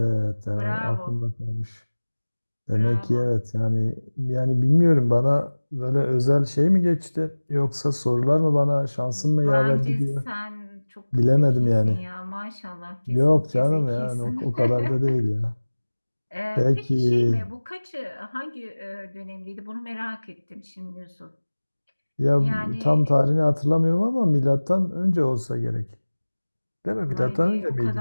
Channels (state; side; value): inverted; both; correlation -1.00